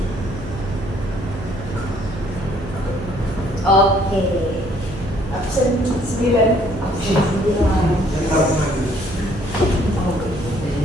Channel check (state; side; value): noise; right; hum, 13 dB below the sound